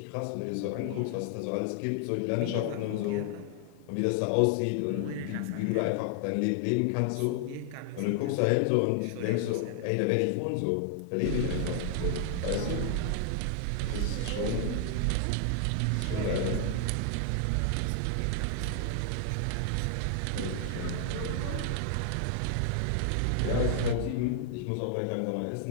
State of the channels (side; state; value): both; different; correlation 0.00